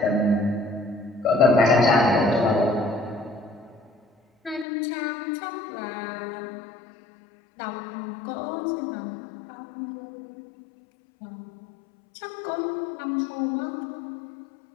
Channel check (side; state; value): right; drops out; at 4.7 s